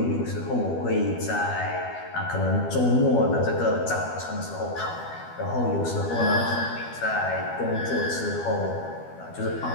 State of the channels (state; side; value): late; right; 12 ms